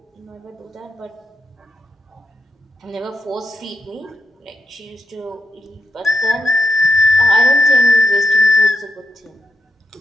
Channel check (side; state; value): both; normal; correlation 0.82